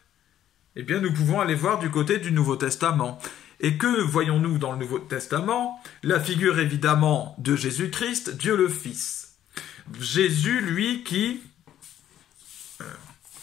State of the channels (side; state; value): right; quieter; 11.4 dB